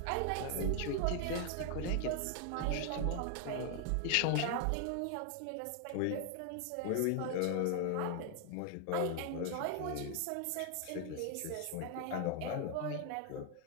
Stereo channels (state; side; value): different; both; correlation 0.00